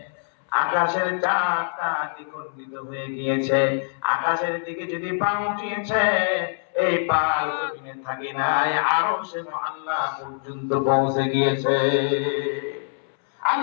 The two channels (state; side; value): silent; right; 62 dB below the other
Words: আকাশের চারটা দ্বিখণ্ডিত হয়ে গিয়েছে, আকাশের দিকে যদি পা উঠিয়েছে, এই পা জমিনে থাকে নাই, আরশে আল্লাহ পর্যন্ত পৌঁছে গিয়েছে।